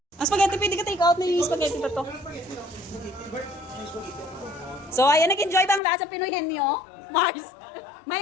Ang spaghetti, pwede ka take out na yung spaghetti pa to. So, ayan, nag-enjoy ba ang lahat sa Pinoy Henyo? Mars.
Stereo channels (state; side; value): drops out; right; at 5.8 s